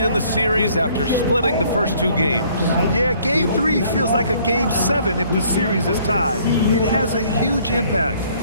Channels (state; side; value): inverted; both; correlation -0.60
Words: in the series after splitting the first 2 games. Yeah, Game 3 feels like a Game 7 if the series is tied. It has a huge impact.